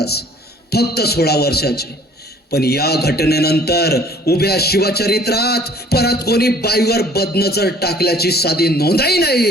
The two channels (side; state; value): both; normal; correlation 0.54